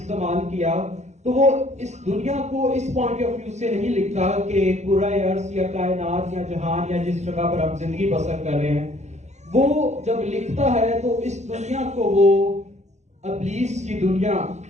किया, तो वो इस दुनिया को इस पॉइंट ऑफ व्यू से नहीं लिखता कि कुराए अर्ज़ या कायनात या जहान या जिस जगह पर हम जिंदगी बसर कर रहे हैं। वो जब लिखता है तो इस दुनिया को वो इब्लीस की दुनिया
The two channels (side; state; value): left; late; 0.33 ms